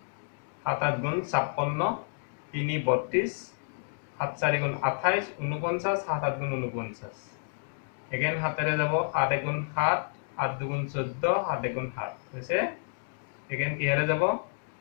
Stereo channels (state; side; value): silent; right; digital silence